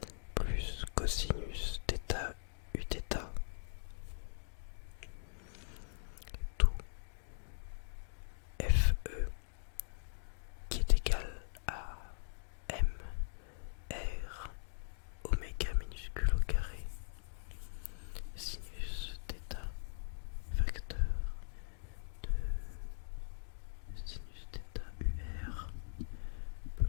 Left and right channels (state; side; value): silent; right; digital silence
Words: plus cosinus θ Uθ, tout FE qui est égal à M R oméga minuscule au carré, sinus θ, facteur de sinus θ UR